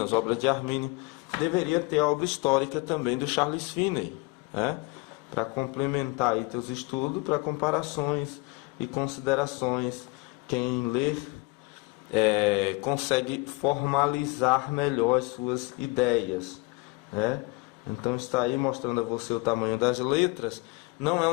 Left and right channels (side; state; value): right; quieter; 26.0 dB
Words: as obras de Armínio, deveria ter a obra histórica também do Charles Finney, né? Para complementar aí teus estudos, para comparações e considerações. Quem ler consegue formalizar melhor as suas ideias, né? Então está aí mostrando a você o tamanho das letras. Não é